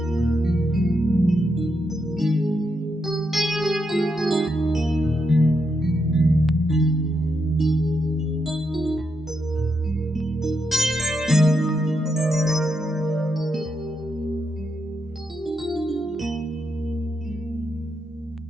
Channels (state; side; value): normal; both; correlation 0.82